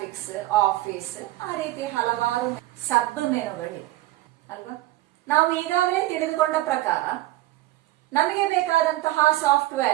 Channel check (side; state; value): left; quieter; 16.8 dB